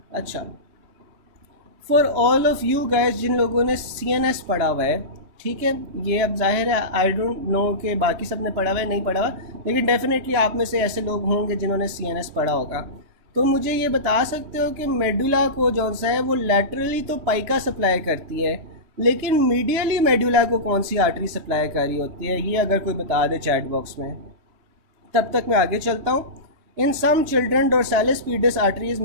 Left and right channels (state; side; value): late; left; 3.2 ms